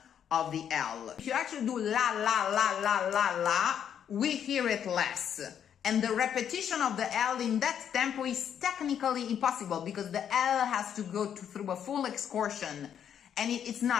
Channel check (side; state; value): right; quieter; 8.9 dB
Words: of the L. If you actually do la la la la la la, we hear it less. And the repetition of the L in that tempo is technically impossible because the L has to go through a full excursion. And it's